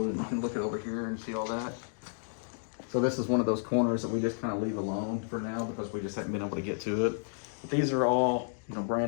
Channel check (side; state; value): right; silent; digital silence